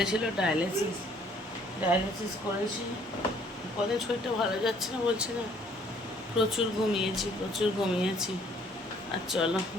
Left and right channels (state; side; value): normal; both; correlation 0.61